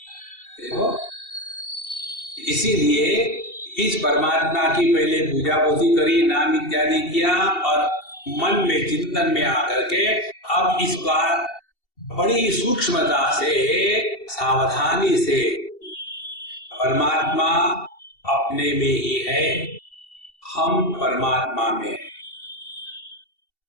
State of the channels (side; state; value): right; late; 2.7 ms